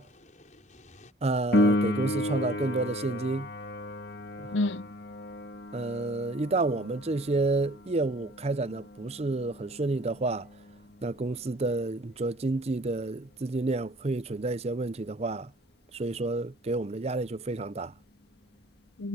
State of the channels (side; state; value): both; normal; correlation 0.52